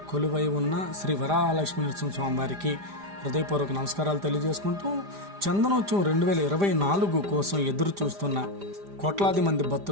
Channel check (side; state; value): left; late; 5.0 ms